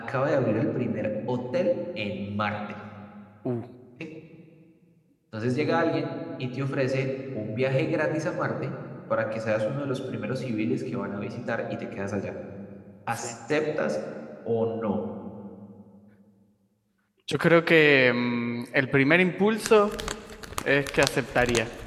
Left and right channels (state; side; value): identical; both; correlation 1.00